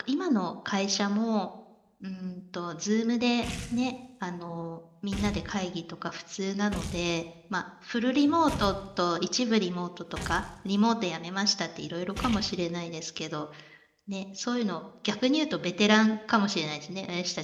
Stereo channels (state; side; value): identical; both; correlation 1.00